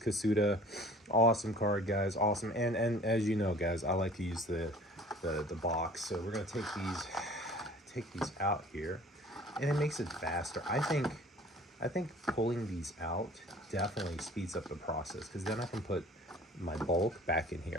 Awesome card, guys. Awesome. And as you know, guys, I like to use the box. So we're gonna take these out here, and it makes it faster. I think I think pulling these out definitely speeds up the process, because then I can put my bulk back in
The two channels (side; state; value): both; normal; correlation 0.48